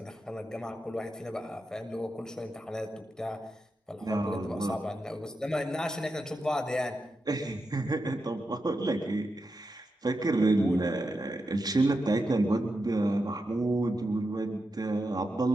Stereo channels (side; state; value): both; normal; correlation 0.88